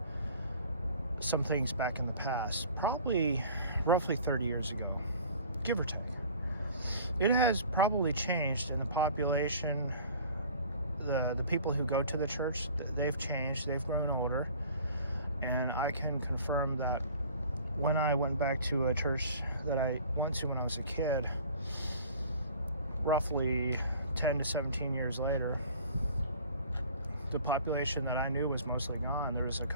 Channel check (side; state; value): both; inverted; correlation -0.47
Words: some things back in the past, probably roughly 30 years ago, give or take. It has probably changed in the population. The people who go to the church, they've changed, they've grown older, and I can confirm that when I went back to a church that I went to when I was a kid, roughly 10 to 17 years later, the population that I knew was mostly gone. There was a